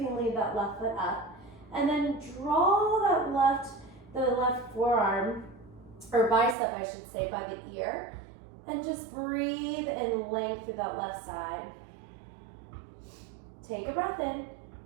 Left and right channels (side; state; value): left; drops out; at 6.6 s